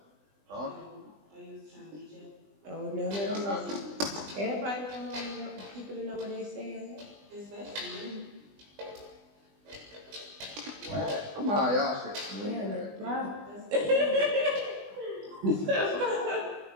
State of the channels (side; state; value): left; late; 20 ms